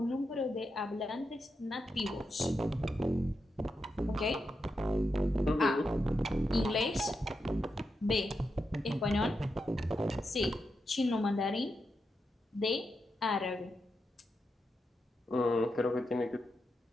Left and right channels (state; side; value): normal; both; correlation 0.86